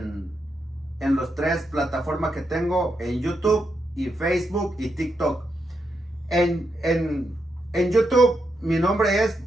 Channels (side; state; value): both; normal; correlation 0.83